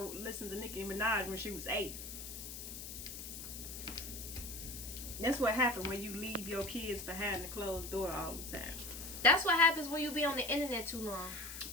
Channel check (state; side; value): noise; left; hiss, 9 dB below the sound